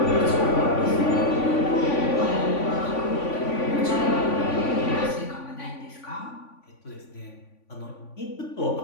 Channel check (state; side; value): late; right; 3.5 ms